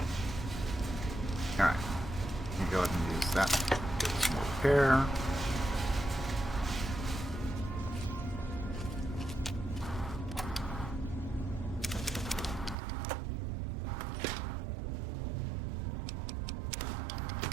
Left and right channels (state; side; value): drops out; left; at 12.8 s